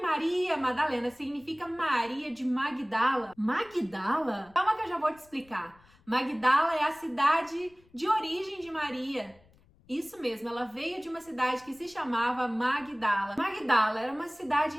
Madalena significa Maria de Magdala. Magdala? Calma que eu já vou te explicar. Magdala é a cidade de origem de Maria. Isso mesmo, ela veio de uma cidade que se chamava Magdala. Magdala era uma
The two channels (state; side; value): noise; left; rumble, 29 dB below the sound